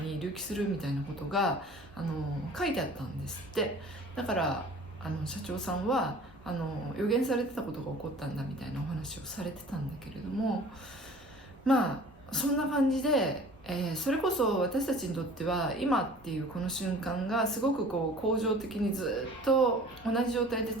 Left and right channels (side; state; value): both; normal; correlation 0.46